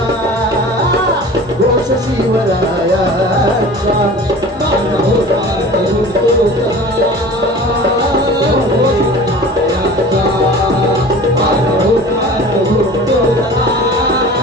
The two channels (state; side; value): normal; both; correlation 0.40